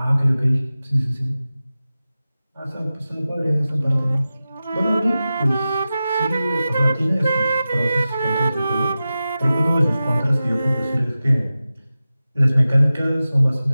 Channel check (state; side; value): inverted; both; correlation -0.94